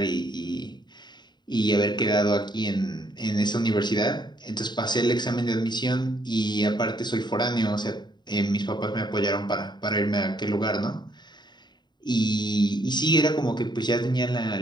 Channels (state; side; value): late; right; 0.21 ms